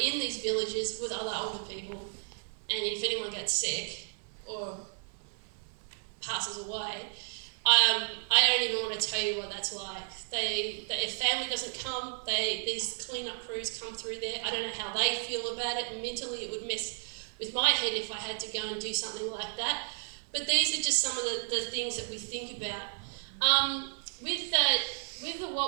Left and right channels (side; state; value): left; silent; 56 dB below the other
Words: in these villages with other older people, and if anyone gets sick or passes away, I don't even want to tell you what that's like. If family doesn't come, these clean-up crews come through there. I don't know how they feel about it, and mentally it would mess with my head if I had to go and do something like that. But these are just some of the things that we think about. With